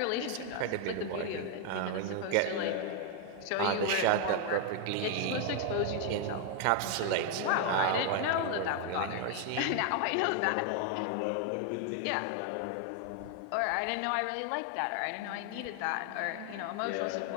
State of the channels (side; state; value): both; different; correlation 0.00